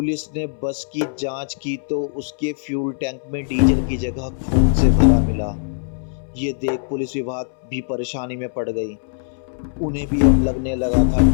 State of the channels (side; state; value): right; silent; 64 dB below the other